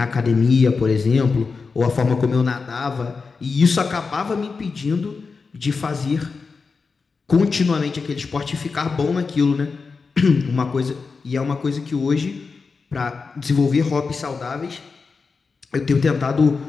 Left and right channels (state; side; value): quieter; right; 4.7 dB